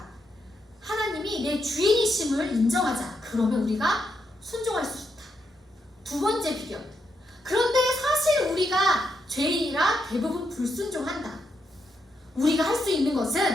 하나님이 내 주인이심을 인정하자. 그러면 우리가 순종할 수 있다. 두 번째 비결. 그런데 사실 우리가 죄인이라 대부분 불순종한다. 우리가 할 수 있는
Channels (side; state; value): both; normal; correlation 0.81